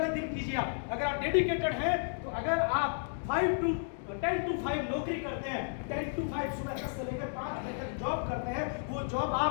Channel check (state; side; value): silent; right; digital silence